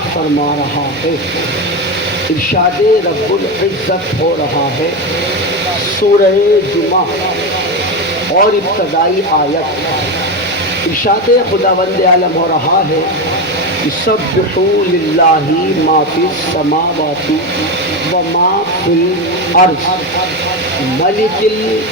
فرما رہا ہے ارشاد رب العزت ہو رہا ہے سورہ جمعہ اور ابتدائی آیت ارشاد خداوند عالم ہو رہا ہے یسبحوا للہ ما فی السماوات وما فی الارض ملک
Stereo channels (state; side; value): noise; right; rumble, 27 dB below the sound